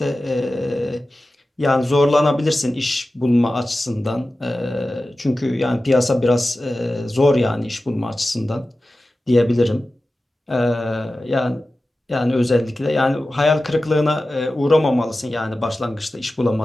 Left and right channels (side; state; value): both; normal; correlation 0.95